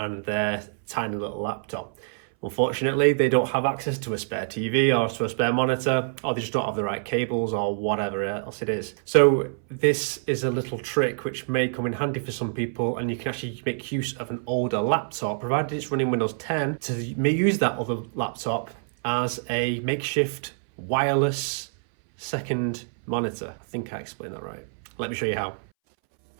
their tiny little laptop. Unfortunately, they don't have access to a spare TV or to a spare monitor, or they just don't have the right cables or whatever else it is. So this is a little trick which may come in handy for some people, and you can actually make use of an older laptop, provided it's running Windows 10, to use that other laptop as a makeshift wireless second monitor. I think I explained that right. Let me show you how.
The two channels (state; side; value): silent; left; 61 dB below the other